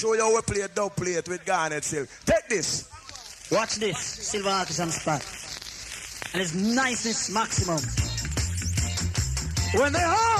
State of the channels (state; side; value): identical; both; correlation 1.00